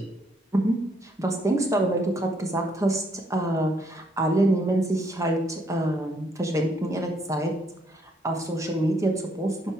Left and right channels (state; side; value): normal; both; correlation 0.70